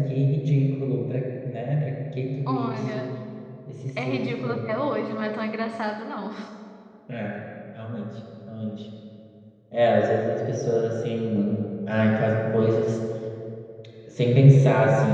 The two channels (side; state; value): both; identical; correlation 1.00